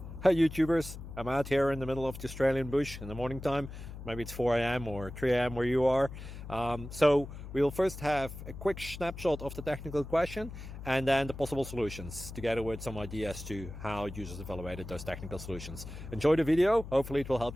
Hi YouTubers, I'm out here in the middle of the Australian bush in the morning time. Maybe it's 4 a.m. or 3 a.m. where you are. So we'll first have a quick snapshot of the technical question and then the possible solutions, together with some ideas to how users evaluated those technical solutions. Enjoy the video, hopefully it will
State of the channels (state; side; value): noise; left; hum, 11 dB below the sound